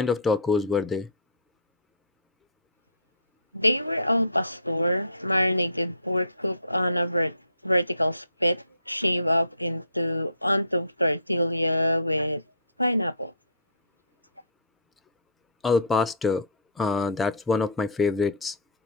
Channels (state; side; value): inverted; both; correlation -0.43